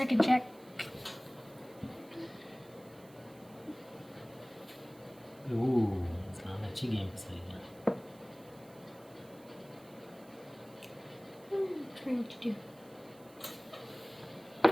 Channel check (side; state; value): right; noise; hiss, 25 dB below the sound